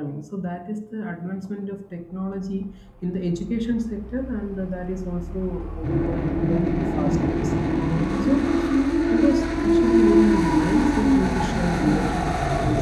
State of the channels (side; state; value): both; identical; correlation 1.00